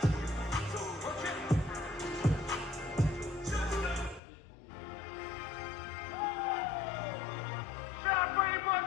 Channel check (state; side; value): drops out; right; at 4.2 s